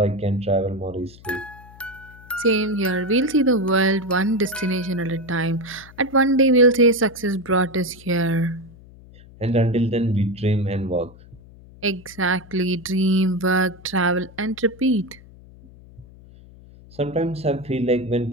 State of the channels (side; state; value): left; noise; hum, 22 dB below the sound